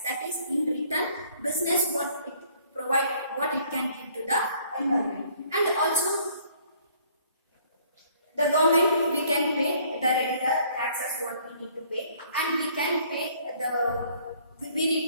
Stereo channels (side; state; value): both; inverted; correlation -0.60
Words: That is, in return, business what it can give to the environment. And also the government, we can pay the regular taxes what we need to pay, and we